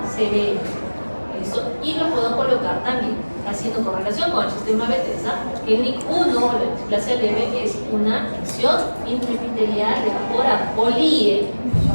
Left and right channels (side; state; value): both; inverted; correlation -1.00